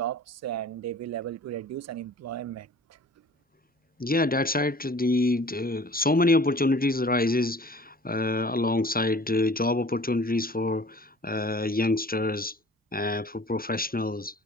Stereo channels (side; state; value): both; normal; correlation 0.47